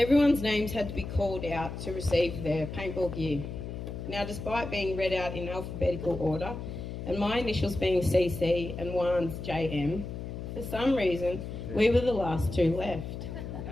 names had to be called out to receive their paintball gear. Now, despite being read out in alphabetical order, and my initials being CC and Juan's JM, for some reason, we were the last two left.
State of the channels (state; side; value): noise; left; hum, 7 dB below the sound